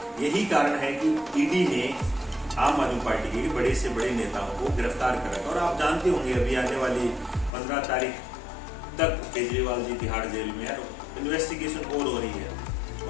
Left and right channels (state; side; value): drops out; right; at 7.5 s